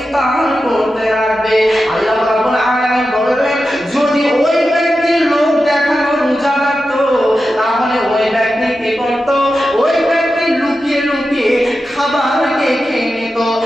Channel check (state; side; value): normal; both; correlation 0.91